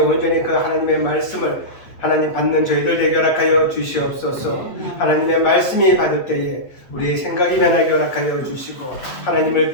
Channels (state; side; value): late; right; 8.5 ms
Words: 그 하나님의 말씀을 하나님 받는 저희들 되게 허락하여 주시옵소서. 하나님의 말씀이 받을 때에 우리의 생각이 변하게 허락하여 주시고, 하나님을